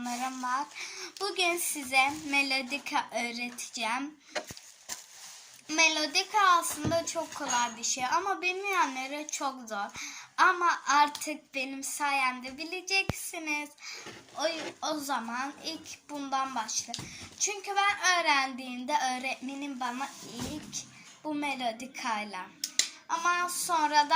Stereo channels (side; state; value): both; identical; correlation 1.00